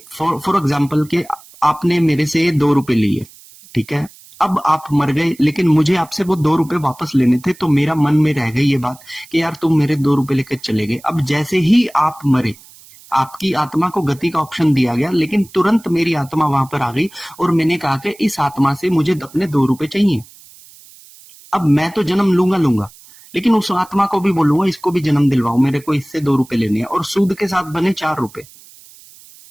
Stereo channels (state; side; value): noise; right; hiss, 23 dB below the sound